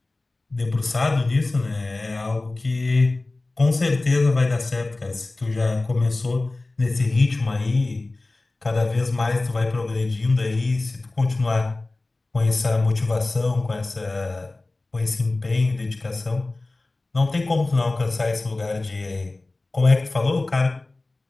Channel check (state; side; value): quieter; right; 3.1 dB